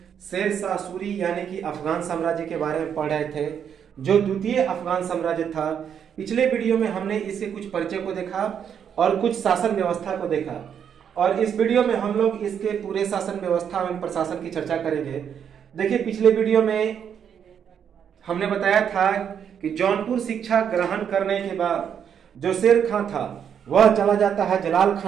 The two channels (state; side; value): quieter; left; 8.1 dB